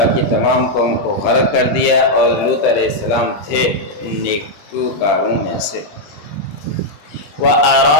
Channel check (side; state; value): right; late; 20 ms